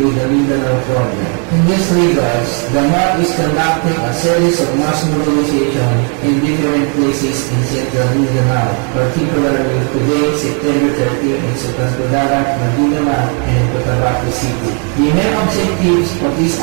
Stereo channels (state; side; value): quieter; left; 39.7 dB